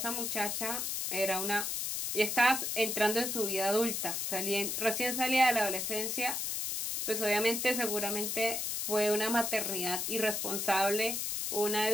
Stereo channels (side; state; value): left; noise; hiss, 1 dB below the sound